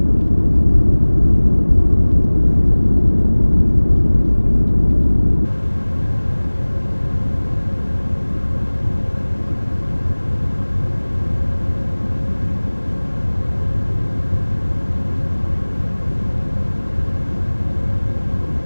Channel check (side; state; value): both; inverted; correlation -1.00